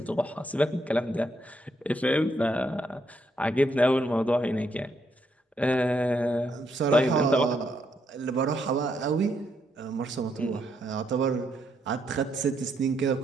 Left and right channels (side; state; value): both; normal; correlation 0.76